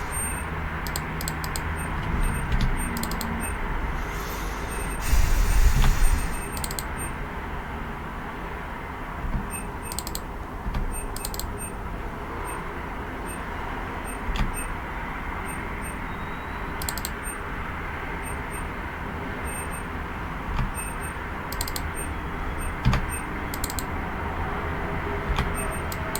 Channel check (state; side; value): identical; both; correlation 1.00